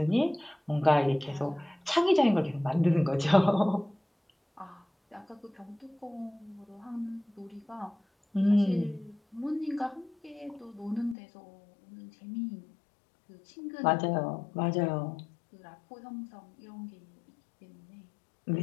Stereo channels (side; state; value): right; drops out; at 11.2 s